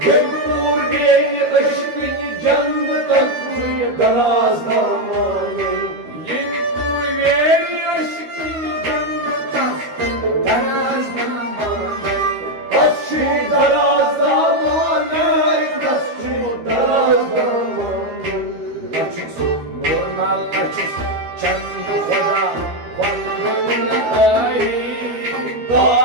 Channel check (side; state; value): left; late; 13 ms